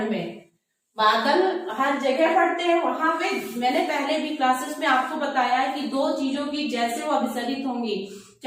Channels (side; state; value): both; identical; correlation 1.00